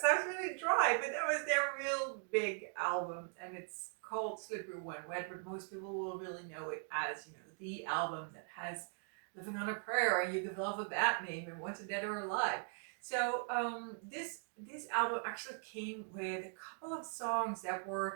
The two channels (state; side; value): silent; left; 51 dB below the other